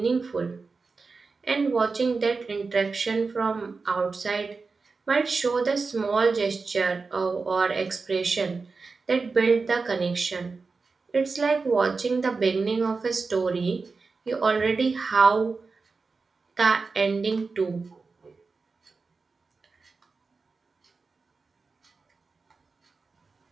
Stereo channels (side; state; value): left; quieter; 4.4 dB